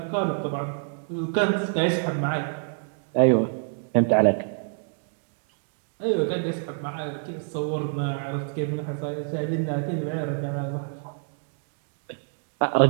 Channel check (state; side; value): silent; left; 60 dB below the other